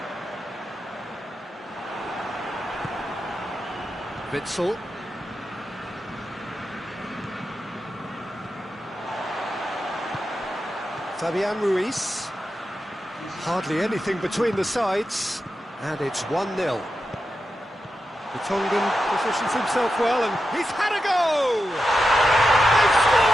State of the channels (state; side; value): normal; both; correlation 0.89